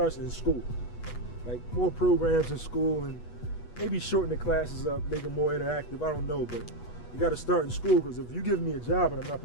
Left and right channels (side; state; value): right; late; 8.2 ms